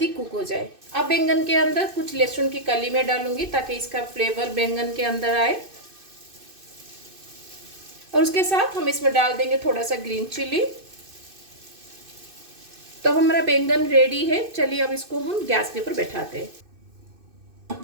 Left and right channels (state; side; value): late; left; 2.5 ms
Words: कुक हो जाए। अब बैंगन के अंदर कुछ लहसुन की कली में डालूंगी ताकि इसका फ्लेवर बैंगन के अंदर आए। और उसके साथ हम इसमें डाल देंगे थोड़ा सा ग्रीन चिली। तो हमारा बैंगन रेडी है। चलिए अब इसको हम गैस के ऊपर बैठाते हैं।